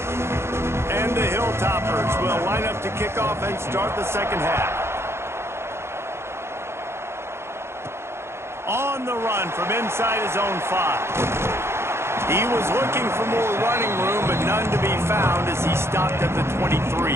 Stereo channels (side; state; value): left; late; 0.12 ms